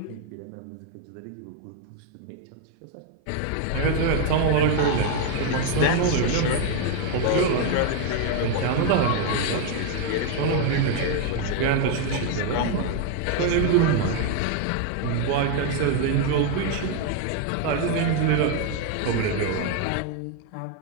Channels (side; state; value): both; different; correlation 0.01